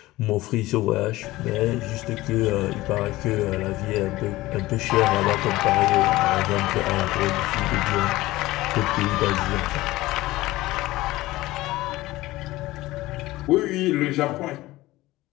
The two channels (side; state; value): right; quieter; 18.1 dB